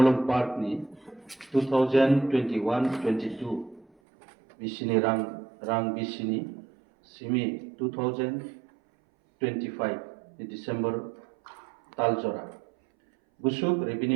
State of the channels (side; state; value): left; drops out; at 3.9 s